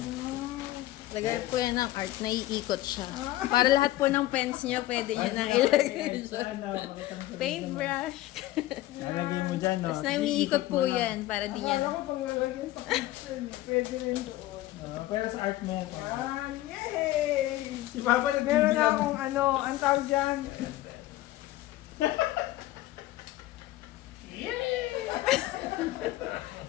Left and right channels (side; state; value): right; quieter; 16.1 dB